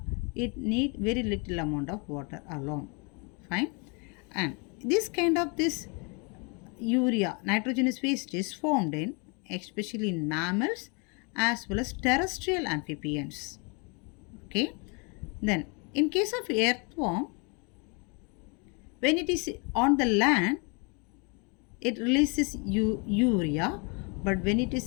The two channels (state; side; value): quieter; right; 33.1 dB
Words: it need very little amount of water alone. Fine. And this urea nitrogenous waste is formed in especially in mammals as well as terrestrial amphibians. Okay. Then in case of earthworm, when it is on the land, it releases urea, but when it